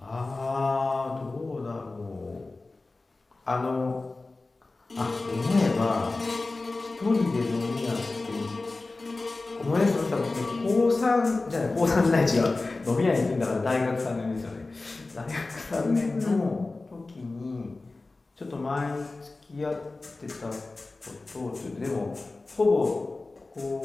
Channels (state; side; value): quieter; right; 3.3 dB